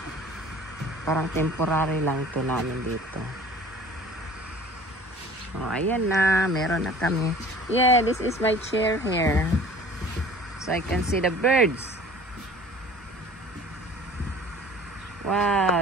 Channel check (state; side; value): normal; both; correlation 0.46